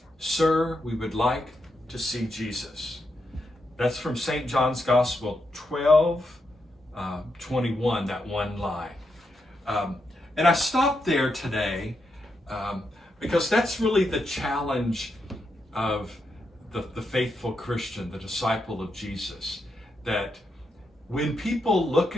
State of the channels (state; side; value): normal; both; correlation 0.83